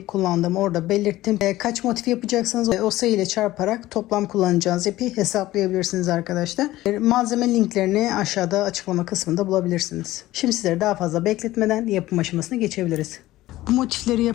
kullandığımı orada belirttim. Kaç motif yapacaksanız o sayı ile çarparak toplam kullanacağınız ipi hesaplayabilirsiniz arkadaşlar. Malzeme linklerini aşağıda açıklama kısmında bulabilirsiniz. Şimdi sizleri daha fazla bekletmeden yapım aşamasına geçebiliriz. Bu motifleri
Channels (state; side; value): quieter; right; 16.4 dB